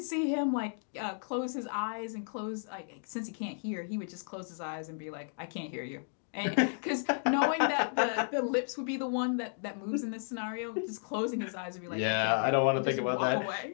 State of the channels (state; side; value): silent; right; digital silence